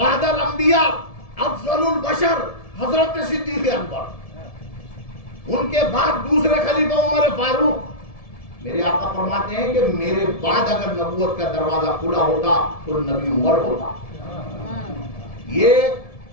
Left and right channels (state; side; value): late; right; 1.7 ms